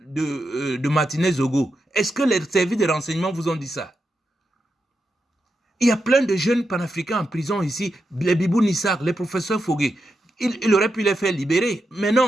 Martinez Zogo? Est-ce que les services de renseignement vous ont dit ça? Il y a plein de jeunes panafricains en prison ici, les Bibou Nissak, les professeurs Fogué. Il aurait pu les faire libérer, mais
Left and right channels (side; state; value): both; normal; correlation 0.86